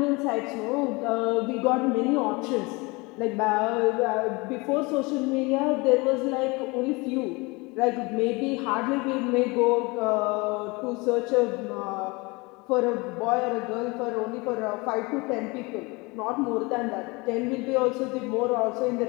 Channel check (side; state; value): right; quieter; 25.7 dB